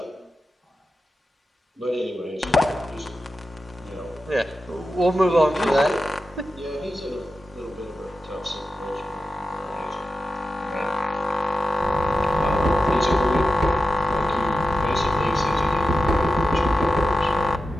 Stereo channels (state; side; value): normal; both; correlation 0.91